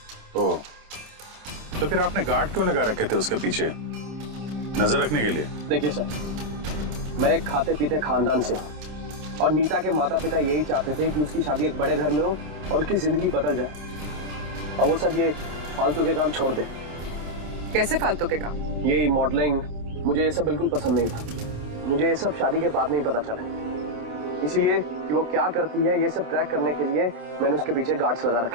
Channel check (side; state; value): left; late; 27 ms